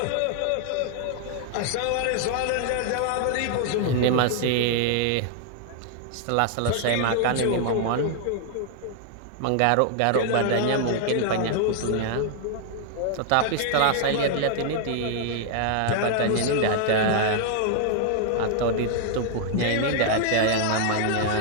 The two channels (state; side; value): different; both; correlation 0.00